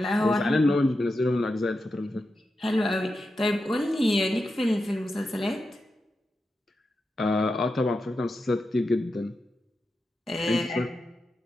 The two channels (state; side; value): normal; both; correlation 0.89